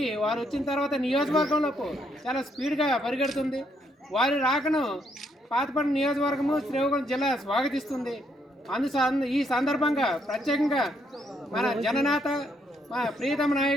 వారు వచ్చిన తర్వాత నియోజకవర్గంలోకి చాలా స్పీడ్గా పరిగెడుతుంది. వారి రాకను పాతపట్నం నియోజకవర్గము శ్రీకాకుళం జిల్లా స్వాగతిస్తుంది. ఈ సందర్భంగా ప్రత్యేకంగా మన జననేత మా ప్రియతమ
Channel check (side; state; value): both; normal; correlation 0.74